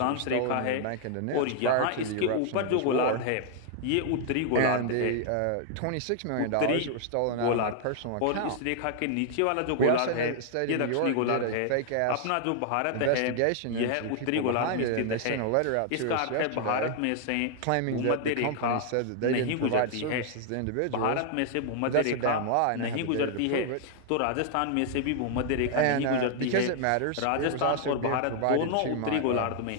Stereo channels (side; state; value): both; different; correlation 0.00